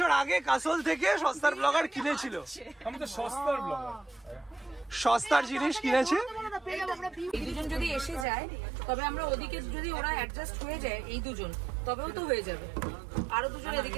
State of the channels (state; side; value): drops out; left; at 8.2 s